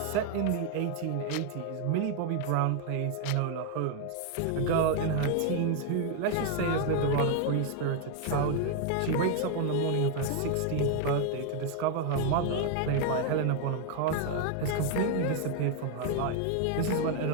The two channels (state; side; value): different; both; correlation 0.00